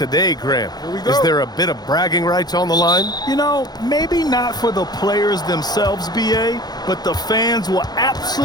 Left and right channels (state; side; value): late; right; 0.19 ms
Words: Grant. Here we go. Is there a bit of bragging rights on the line? You know, maybe not for the players themselves, BA, but the fans will